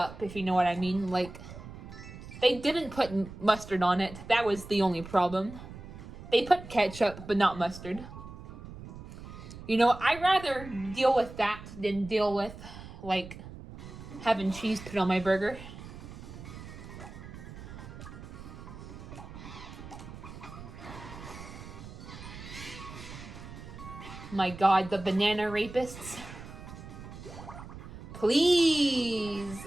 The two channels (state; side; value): noise; right; rumble, 13 dB below the sound